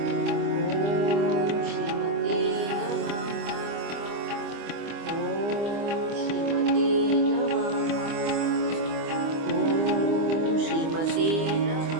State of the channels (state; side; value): late; left; 25 ms